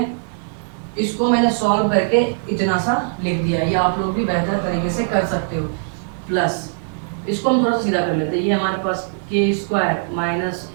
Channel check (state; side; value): silent; left; digital silence